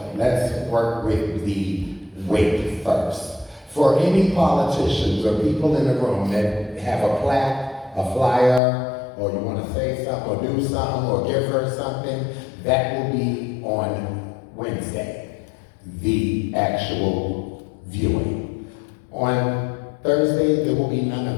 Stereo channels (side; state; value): right; drops out; at 8.6 s